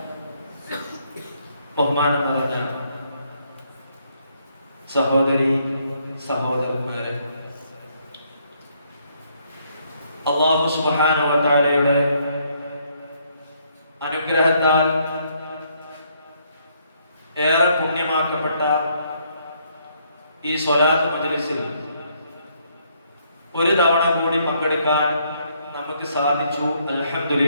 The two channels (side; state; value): both; inverted; correlation -0.70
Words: ബഹുമാനം നിറഞ്ഞ സഹോദരി സഹോദരന്മാരെ, അല്ലാഹു സുബ്ഹാനഹു വ തആലയുടെ അനുഗ്രഹത്താൽ ഏറെ പുണ്യമാക്കപ്പെട്ട ഈ സ്വലാത്ത് മജ്‌ലിസിൽ ഒരു തവണ കൂടി പങ്കെടുക്കാൻ നമുക്ക് സാധിച്ചു.